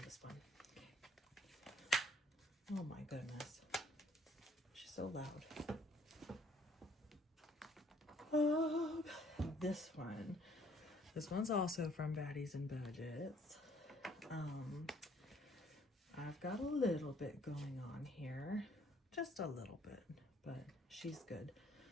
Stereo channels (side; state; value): both; normal; correlation 0.61